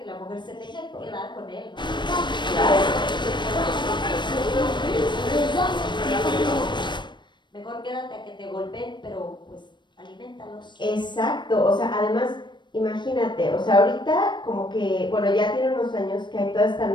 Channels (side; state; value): right; late; 0.22 ms